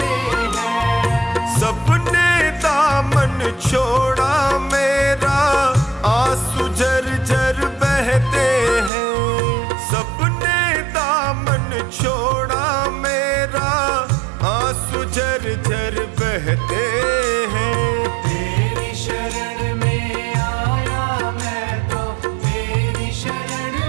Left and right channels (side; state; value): left; drops out; at 8.9 s